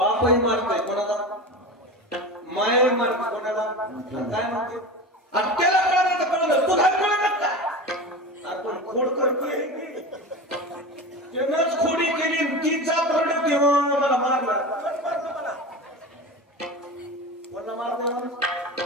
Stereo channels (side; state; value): both; normal; correlation 0.28